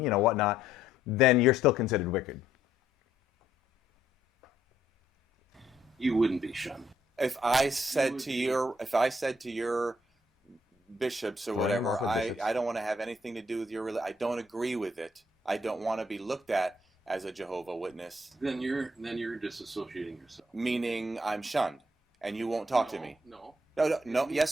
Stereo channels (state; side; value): normal; both; correlation 0.69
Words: you know, whatnot, then you're still considered wicked. You wouldn't be shunned. If I said to your bishops or whatever, I don't want to have anything to do with your religion, I don't agree with it, I don't want to be looked at as a Jehovah Witness, then you're disassociating yourself. Meaning I'm shunned, and you won't talk to me. No. No.